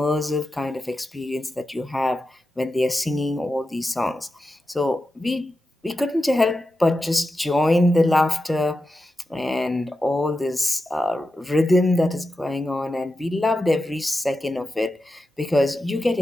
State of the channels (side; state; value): both; normal; correlation 0.90